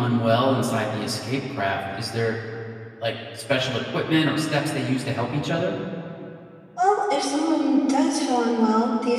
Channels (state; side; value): identical; both; correlation 1.00